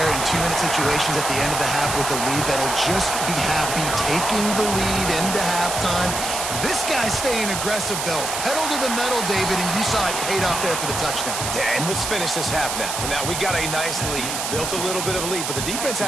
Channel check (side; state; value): right; noise; hiss, 3 dB below the sound